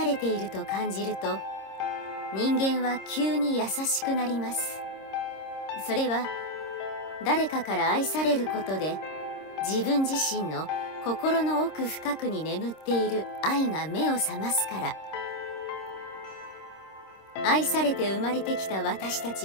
れていると感じると、人間は急に優しくなります。それは誰かから愛されることで、自分自身の心の奥深くに眠っている愛が目を覚ますから。愛されて生まれてきた私た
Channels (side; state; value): right; late; 26 ms